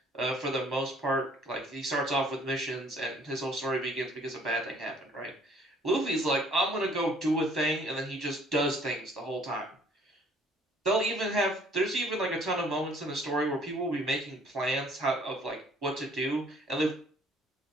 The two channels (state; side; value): normal; both; correlation 0.58